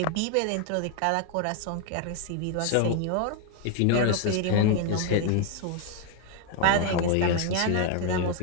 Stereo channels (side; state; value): both; different; correlation 0.00